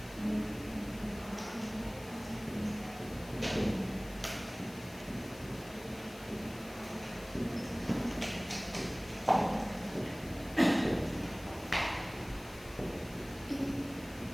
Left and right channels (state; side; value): noise; left; hiss, 19 dB below the sound